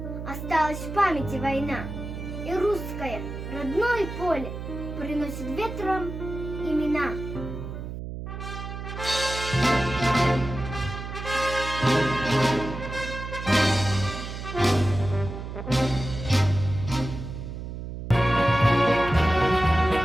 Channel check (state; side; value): noise; right; hum, 8 dB below the sound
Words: Осталась в памяти война. И русское родное поле приносит ветром имена.